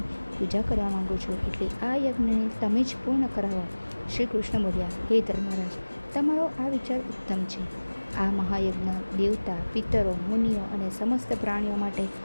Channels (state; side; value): inverted; both; correlation -1.00